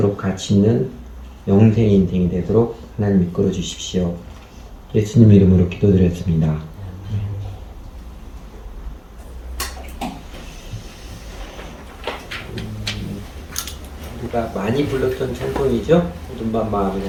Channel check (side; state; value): both; identical; correlation 1.00